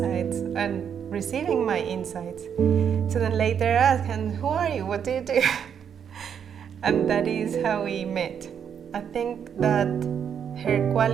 and receiving my insights. So then later I asked, and who are you? What do you do? And that is how we met. I think that her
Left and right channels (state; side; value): quieter; left; 8.0 dB